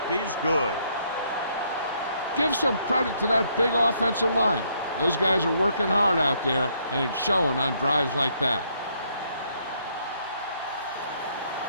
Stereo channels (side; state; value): both; inverted; correlation -0.70